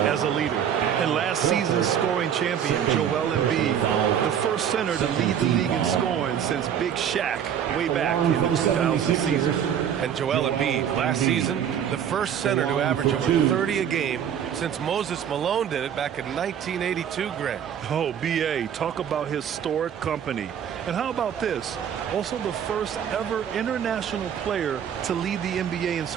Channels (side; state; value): left; quieter; 8.9 dB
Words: a leader. And last season's scoring champion, Joel Embiid, the first center to lead the league in scoring since Big Shaq way back in the 2000 season. And Joel Embiid, last season, the first center to average over 30 a game since Moses Malone did it back in 1982, Grant. Oh, B.A., talk about historic company. And how about this? Also the first ever international player to lead the NBA in